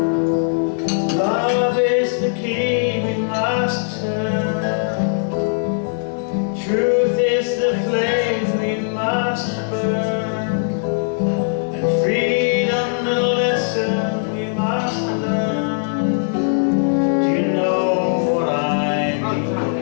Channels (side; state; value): right; silent; 56 dB below the other